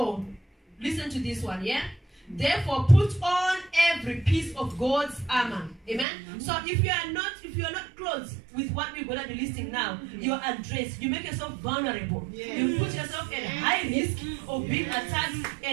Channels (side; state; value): left; drops out; at 6.1 s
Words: listen to this one, yeah? Therefore, put on every piece of God's armor. Amen. So if you are not clothed with what we're gonna be listing now, you are undressed. You make yourself vulnerable. You put yourself at high risk of being attacked